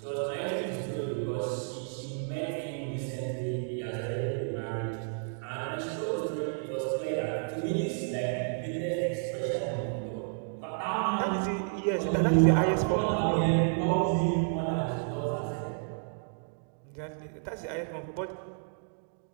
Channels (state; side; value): silent; left; digital silence